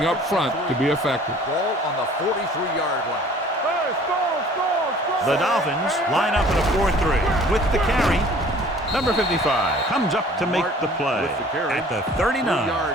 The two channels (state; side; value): normal; both; correlation 0.51